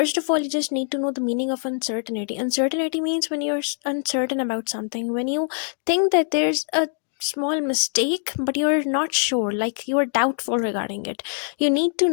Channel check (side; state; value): right; silent; digital silence